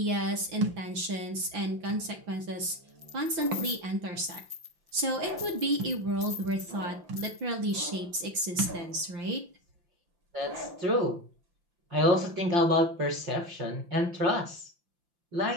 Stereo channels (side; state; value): left; late; 5.8 ms